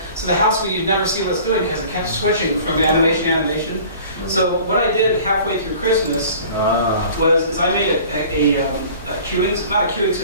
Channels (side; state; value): both; inverted; correlation -0.46